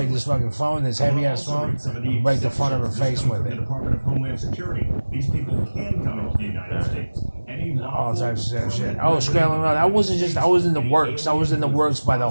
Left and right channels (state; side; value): inverted; both; correlation -1.00